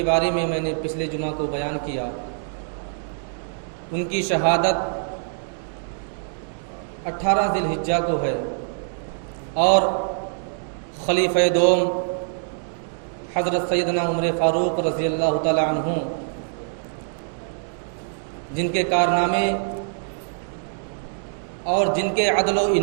بارے میں نے پچھلے جمعہ کو بیان کیا، ان کی شہادت 18 ذی الحجہ کو ہے، اور خلیفہ دوم حضرت سیدنا عمر فاروق رضی اللہ تعالی عنہ، جن کے کارنامے اور جن کے عدل و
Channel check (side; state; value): left; silent; digital silence